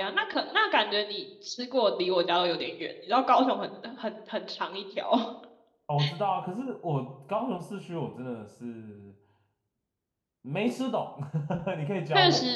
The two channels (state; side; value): identical; both; correlation 1.00